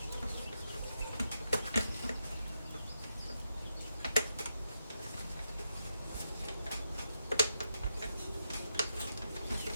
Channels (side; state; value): both; inverted; correlation -0.85